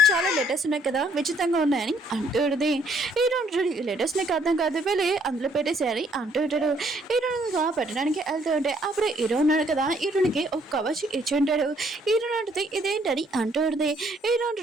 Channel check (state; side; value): normal; both; correlation 0.65